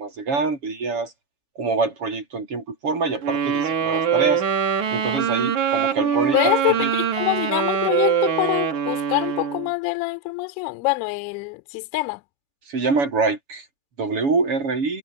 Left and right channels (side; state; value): left; late; 7.1 ms